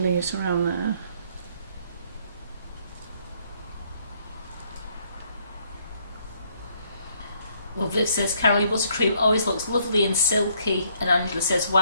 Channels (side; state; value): both; inverted; correlation -0.67